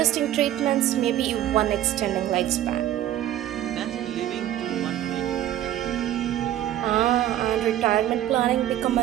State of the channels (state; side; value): quieter; left; 12.5 dB